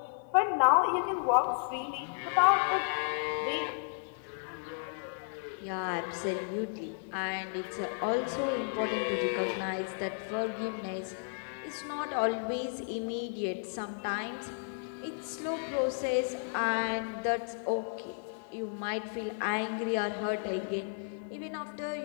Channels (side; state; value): right; silent; digital silence